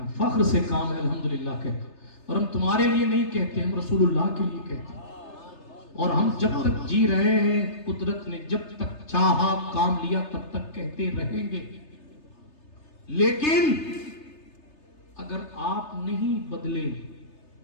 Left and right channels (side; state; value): right; late; 3.3 ms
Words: فخر سے کام ہے الحمدللہ کہنا, اور ہم تمہارے لیے نہیں کہتے, ہم رسول اللہ کے لیے کہتے ہیں. اور ہم جب تک جی رہے ہیں, قدرت نے جب تک چاہا کام لیا تب تک کہتے رہیں گے. لیکن اگر آپ نہیں بدلے,